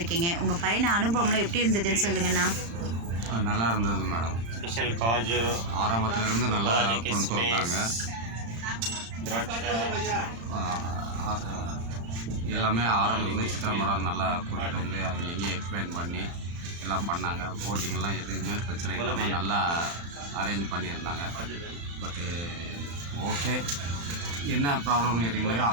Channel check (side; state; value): left; late; 35 ms